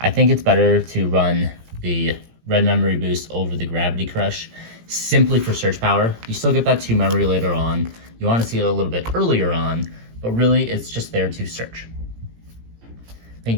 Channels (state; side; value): late; left; 17 ms